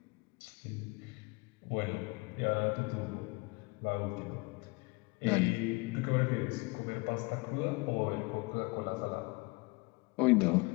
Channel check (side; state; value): right; quieter; 26.6 dB